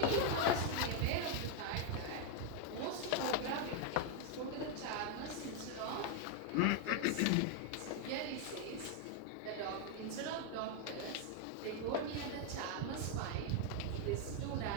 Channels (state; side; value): different; both; correlation 0.00